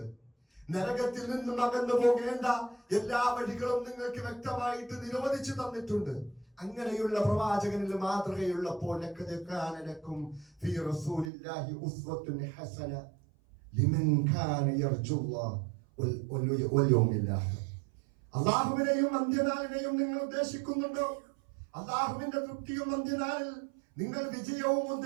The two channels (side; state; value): left; drops out; at 11.3 s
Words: നരകത്തിൽ നിന്നും അകന്നു പോകേണ്ട എല്ലാ വഴികളും നിങ്ങൾക്ക് വ്യക്തമായിട്ട് നിരോധിച്ചു തന്നിട്ടുണ്ട്. അങ്ങനെയുള്ള പ്രവാചകനിൽ മാതൃകയുള്ളപ്പോൾ അല്ലാഹുവിനെയും അന്ത്യനാളിനെയും നിങ്ങൾ ഉദ്ദേശിക്കുന്നുണ്ടോ? അല്ലാഹുവിന്റെ തൃപ്തിയും അന്ത്യനാളിൽ നിങ്ങൾ വിജയവും